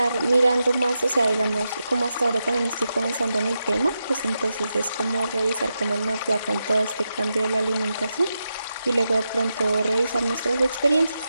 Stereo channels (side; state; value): both; inverted; correlation -0.88